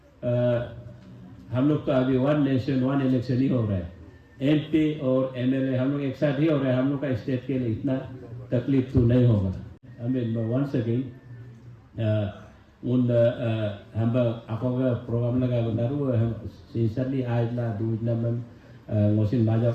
हम लोग तो अभी one nation one election ही हो रहा है MP और MLA हम लोग एक साथ ही हो रहा है हम लोग का स्टेट के लिए इतना तकलीफ तो नहीं होगा हमें once again हम आपको प्रोग्राम लगा बनारू हम sincerely आज ला दूध नमन ngosin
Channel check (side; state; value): both; identical; correlation 1.00